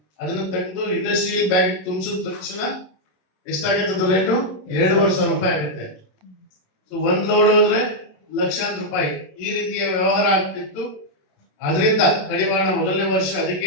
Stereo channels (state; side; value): late; right; 27 ms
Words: ಅದನ್ನ ತೆಗೆದು ಇಂಡಸ್ಟ್ರಿಯಲ್ ಬ್ಯಾಗ್ ತುಂಬಿಸಿದ ತಕ್ಷಣ ಎಷ್ಟಾಗುತ್ತೆ ರೇಟು? 2,500 ರೂಪಾಯಿ ಆಗುತ್ತೆ. ಸೊ 1 ಲೋಡ್ ಹೋದ್ರೆ ಲಕ್ಷಾಂತರ ರೂಪಾಯಿ ಈ ರೀತಿಯ ವ್ಯವಹಾರ ಆಗ್ತಿತ್ತು. ಅದರಿಂದ ಕಡಿವಾಣ ಮೊದಲನೇ ವರ್ಷ ಅದಕ್ಕೆ